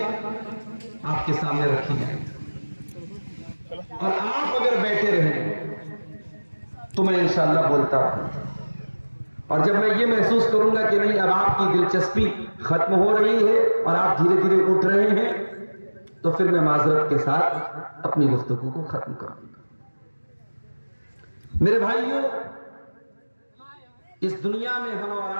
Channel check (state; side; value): inverted; both; correlation -1.00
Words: आपके सामने रखी जाएंगी और आप अगर बैठे रहें तो मैं इंशाअल्लाह बोलता हूं। और जब मैं ये महसूस करूंगा कि नहीं अब आपकी दिलचस्पी खत्म हो रही है और आप धीरे धीरे उठ रहे हैं, तो फिर मैं माजरत के साथ अपनी गुफ्तगू को खत्म करूंगा। मेरे भाइयों, इस दुनिया में हम और